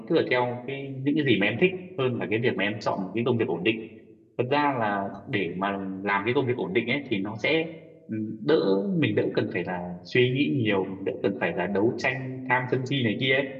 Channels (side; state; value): both; identical; correlation 1.00